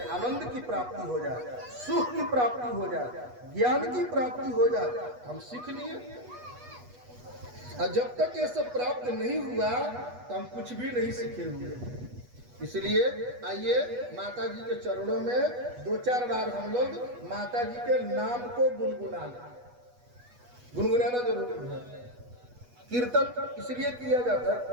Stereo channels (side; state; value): left; late; 8.2 ms